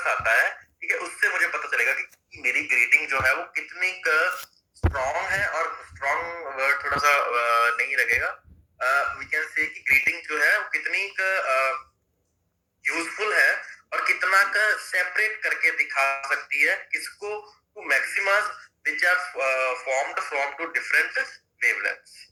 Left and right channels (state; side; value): identical; both; correlation 1.00